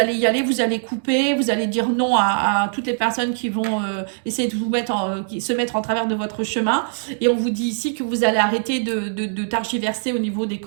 y aller, vous allez couper, vous allez dire non à toutes les personnes qui vont essayer de vous qui se mettre en travers de votre chemin. Et on vous dit ici que vous allez arrêter de targiverser au niveau des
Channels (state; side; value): silent; left; digital silence